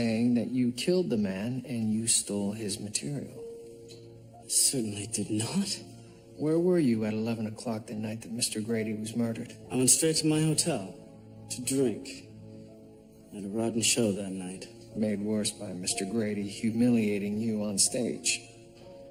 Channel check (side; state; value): both; identical; correlation 1.00